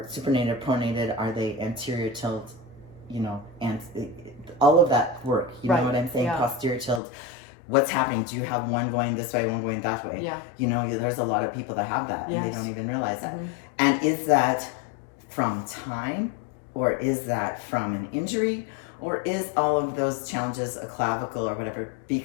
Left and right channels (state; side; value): drops out; right; at 7.0 s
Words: supinated, pronated? Are they anterior tilt? You know, and all of that work. You know what I'm saying? Posterior tilt. What's happening? Do you have one going this way, one going that way? Yeah. You know, there's a lot of people that have that, and they don't even realize that. And is that from time, or is that from an injury, or is all of those challenges a clavicle or whatever